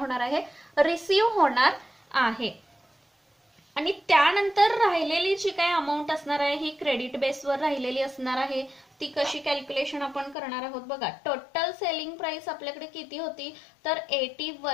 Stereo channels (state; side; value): drops out; right; at 10.4 s